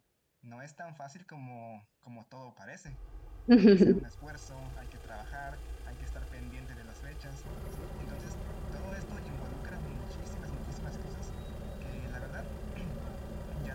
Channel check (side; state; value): both; identical; correlation 1.00